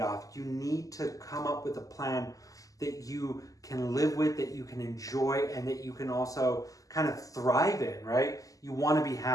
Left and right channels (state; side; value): late; right; 0.17 ms